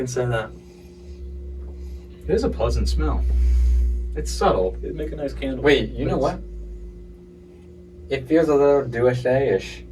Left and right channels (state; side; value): identical; both; correlation 1.00